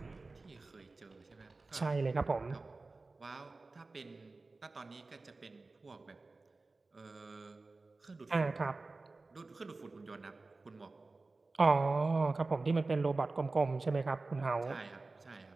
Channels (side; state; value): left; quieter; 3.5 dB